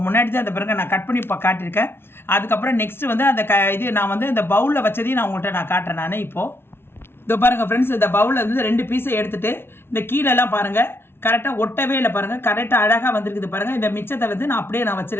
முன்னாடி தான் அந்த பிறகு நான் கட் பண்ணி காட்டியிருக்கேன். அதுக்கப்புறம் நெக்ஸ்ட்டு வந்து அந்த இது நான் வந்து இந்த பவுலில் வச்சதையும் நான் உங்கள்கிட்ட நான் காட்டுறேன். நான் இப்போது இதோ பாருங்கள் ஃப்ரெண்ட்ஸ், இந்த பவுலில் வந்து 2 பீஸை எடுத்துகிட்டு இந்த கீழெல்லாம் பாருங்கள் கரெக்டாக ஒட்டவே இல்லை பாருங்கள், கரெக்டாக அழகாக வந்துருக்குது பாருங்கள். இந்த மிச்சத்தை வந்து நான் அப்படியே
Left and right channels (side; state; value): right; late; 0.12 ms